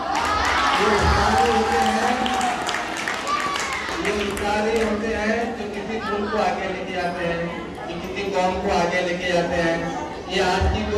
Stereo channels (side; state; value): both; identical; correlation 1.00